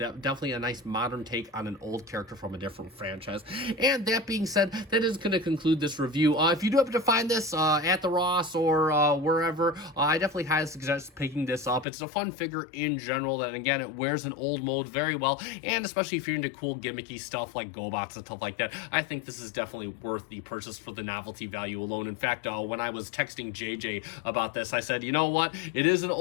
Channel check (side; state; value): right; drops out; at 11.9 s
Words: nice modern take on an old character from a different franchise. And that being said, that is going to conclude this review. If you do happen to find this at the Ross or wherever, I definitely highly suggest picking this up. It's a fun figure in general, that again, it wears an old mold very well, and especially if you're into cool gimmicky stuff like GoBots and stuff like that, I think this is definitely worth the purchase for the novelty value alone. In fact, when I was texting JJ about this, I said, you know what, it is an